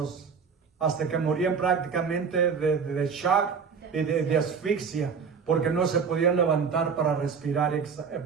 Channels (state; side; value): quieter; left; 6.0 dB